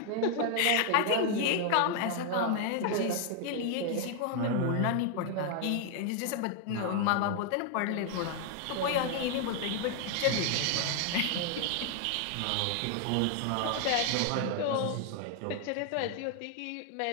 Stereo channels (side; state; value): both; different; correlation 0.00